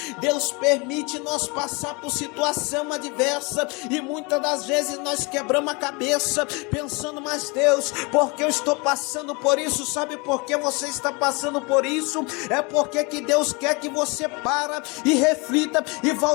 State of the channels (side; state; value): right; quieter; 28.9 dB